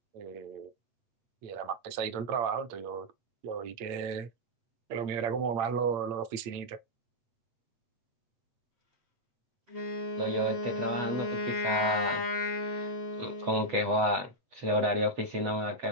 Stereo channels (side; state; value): left; late; 8.8 ms